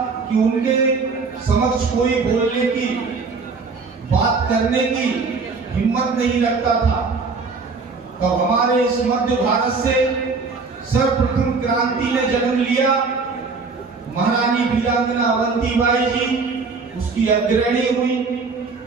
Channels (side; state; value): left; quieter; 4.5 dB